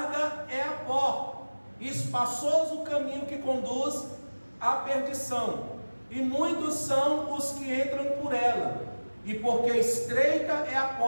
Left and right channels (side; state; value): both; inverted; correlation -1.00